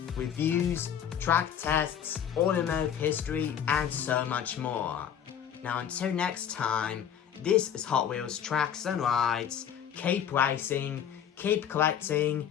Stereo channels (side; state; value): right; quieter; 8.9 dB